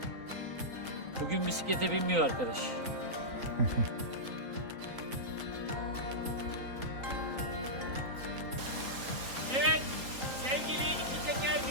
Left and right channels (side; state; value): left; late; 3.9 ms